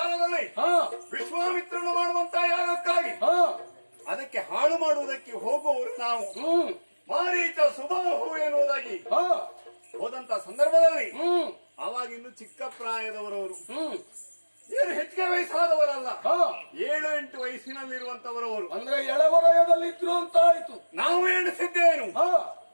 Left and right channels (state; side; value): inverted; both; correlation -1.00